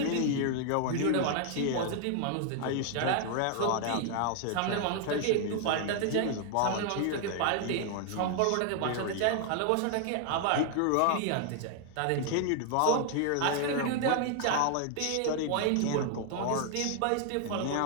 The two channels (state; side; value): different; both; correlation 0.00